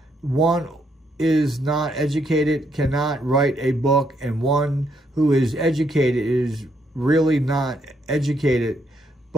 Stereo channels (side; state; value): both; normal; correlation 0.74